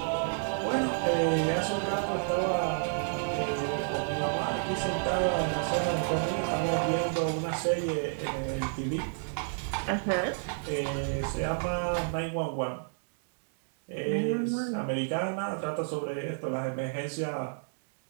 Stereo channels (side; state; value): left; silent; digital silence